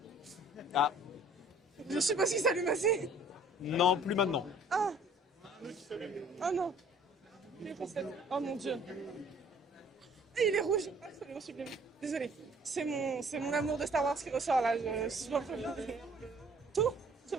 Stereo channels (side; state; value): both; normal; correlation 0.54